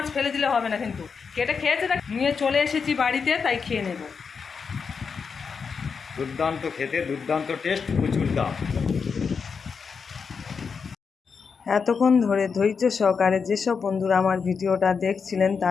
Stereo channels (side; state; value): right; quieter; 5.7 dB